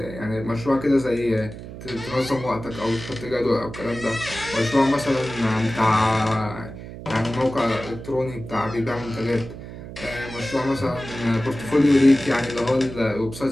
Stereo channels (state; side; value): noise; right; hum, 12 dB below the sound